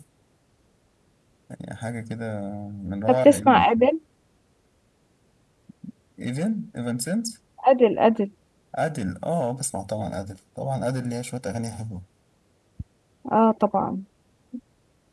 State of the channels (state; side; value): identical; both; correlation 1.00